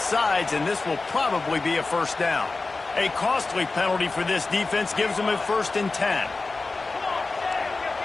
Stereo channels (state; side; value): quieter; right; 3.7 dB